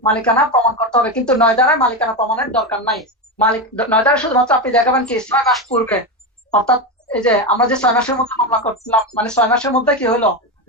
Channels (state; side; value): normal; both; correlation 0.14